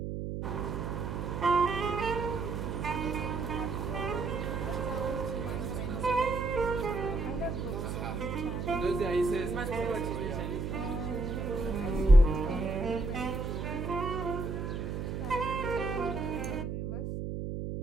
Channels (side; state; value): right; noise; hum, 3 dB below the sound